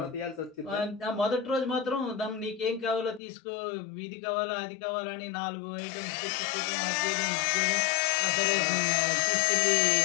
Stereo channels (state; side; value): drops out; right; at 3.2 s